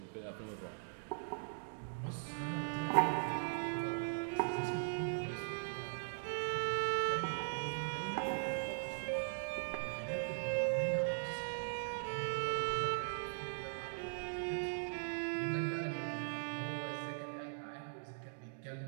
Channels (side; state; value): left; silent; digital silence